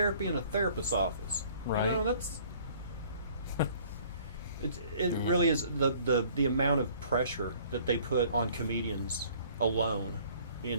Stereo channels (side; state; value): both; inverted; correlation -0.54